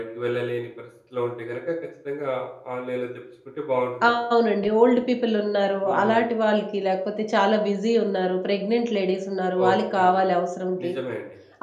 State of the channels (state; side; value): identical; both; correlation 1.00